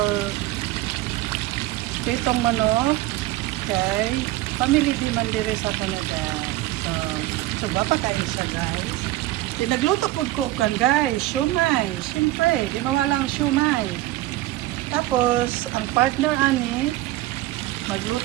pritong manok kay family di man dire sa Canada. So wapa kayo siya, guys. Nagluto po ko kan, guys, siomai. Siyempre, di mawala ang siomai. Tapos, ang partner ani,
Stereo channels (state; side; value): quieter; left; 16.8 dB